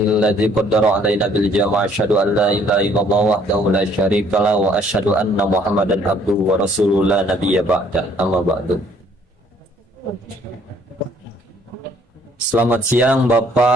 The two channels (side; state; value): both; normal; correlation 0.62